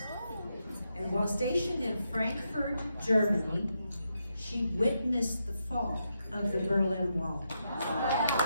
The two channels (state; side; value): inverted; both; correlation -0.83